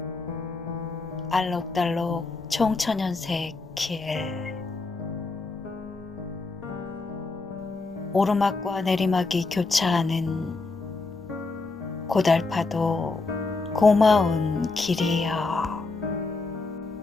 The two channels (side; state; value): right; quieter; 3.7 dB